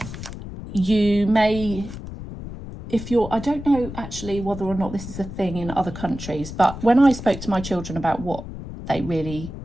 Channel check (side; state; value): left; noise; rumble, 10 dB below the sound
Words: you may, if you're, I don't know actually whether or not this is a thing in other countries, but when I spoke to my children about what they really